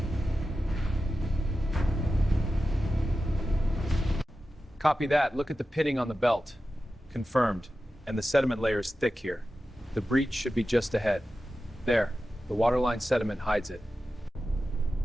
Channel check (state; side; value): normal; both; correlation 0.93